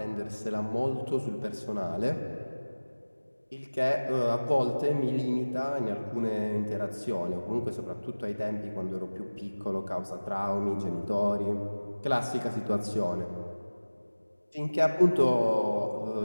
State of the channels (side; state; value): both; inverted; correlation -1.00